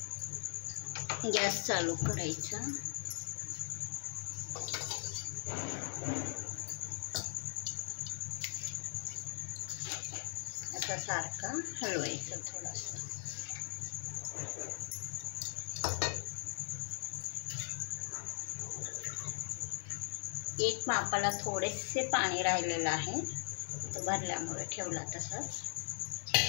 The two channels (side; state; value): right; silent; digital silence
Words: गॅस चालू करायचा. आता सारखा हलवायचं थोडासा. एक मापाला थोडेसे पाणी राहिलेलं आहे, तो भरल्यामुळे ठेवला तसंच.